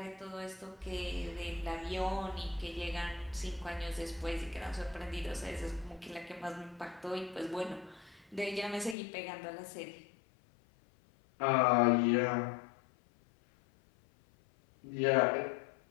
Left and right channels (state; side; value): drops out; right; at 9.0 s